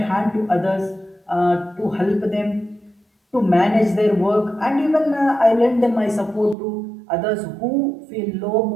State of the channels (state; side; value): drops out; left; at 6.6 s